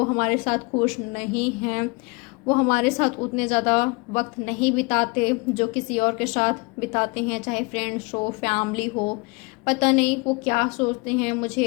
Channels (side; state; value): right; quieter; 28.6 dB